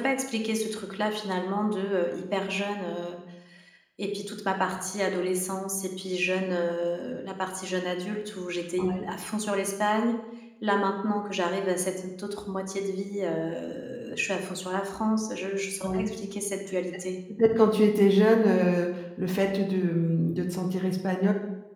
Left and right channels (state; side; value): identical; both; correlation 1.00